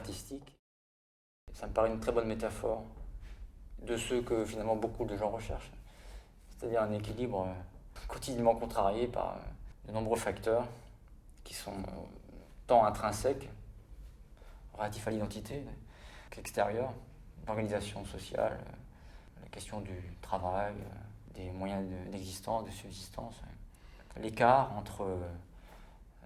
Ça me paraît une très bonne métaphore de ce que finalement beaucoup de gens recherchent, c'est-à-dire un équilibre quotidiennement contrarié par de nombreux facteurs qui sont tant intrinsèques, relatifs à l'identité, qu'extérieurs, l'organisation sociale, la question du travail, des moyens d'existence, de subsistance, l'écart entre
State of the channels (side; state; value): both; identical; correlation 1.00